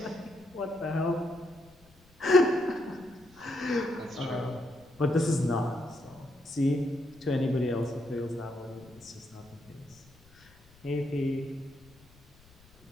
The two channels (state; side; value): noise; left; rumble, 27 dB below the sound